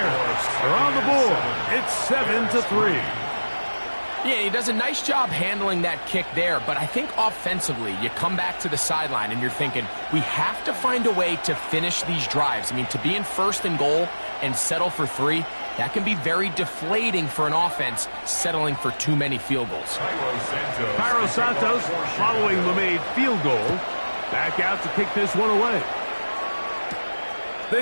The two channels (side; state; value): both; inverted; correlation -1.00